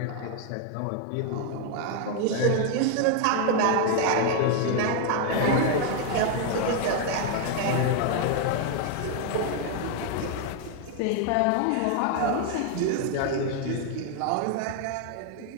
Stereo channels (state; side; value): different; both; correlation 0.00